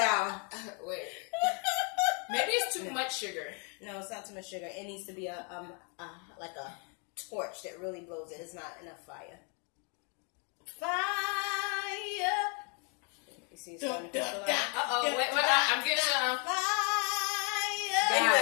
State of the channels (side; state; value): right; quieter; 36.7 dB